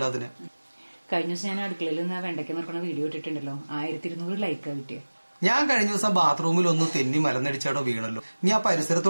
കഴിഞ്ഞ ദിവസം ഞാൻ അടുക്കളയിൽ നിന്ന് വെണ്ടയ്ക്ക നിൽക്കുന്ന വീഡിയോ ഇട്ടിട്ടുണ്ടല്ലോ, 1200 ലൈക്കാ കിട്ടിയ. ഞാൻ കഴിഞ്ഞ ദിവസം ബാത്റൂമിൽ ഒന്ന് തെന്നി മലന്നടിച്ചാടോ വീണല്ലോ. നീ ആ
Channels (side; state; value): both; inverted; correlation -1.00